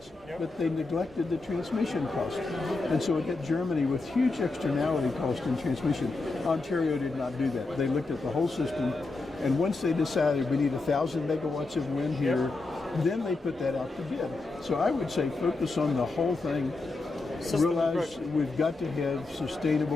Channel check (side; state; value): right; quieter; 3.5 dB